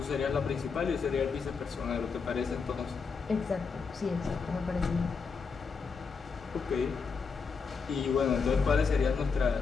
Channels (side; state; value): right; quieter; 5.3 dB